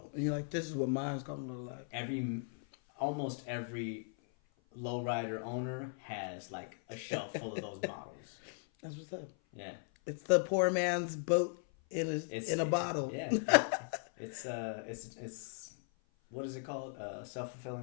You're like, this is what mine's gonna look like. Almost every lowrider owner has like a shelf full of those models. That's what's up. Yeah. It's the poor man's boat in a bottle. Yeah. It's what is it called?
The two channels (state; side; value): silent; right; 53 dB below the other